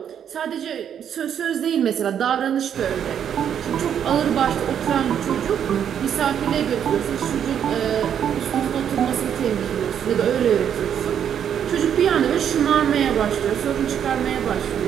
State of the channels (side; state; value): left; quieter; 8.8 dB